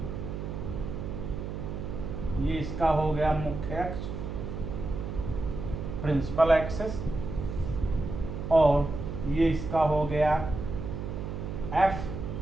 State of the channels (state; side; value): noise; right; hum, 6 dB below the sound